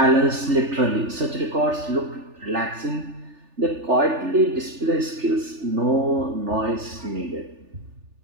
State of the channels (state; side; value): late; left; 3.4 ms